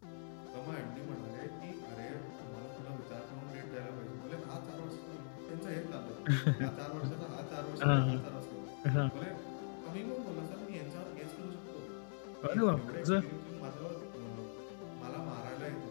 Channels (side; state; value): right; silent; digital silence